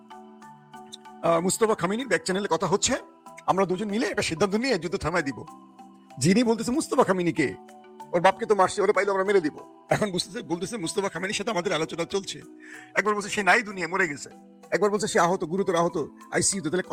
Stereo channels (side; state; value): both; identical; correlation 1.00